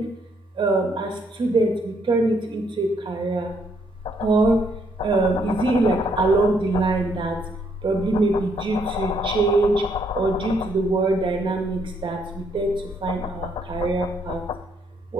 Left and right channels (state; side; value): normal; both; correlation 0.71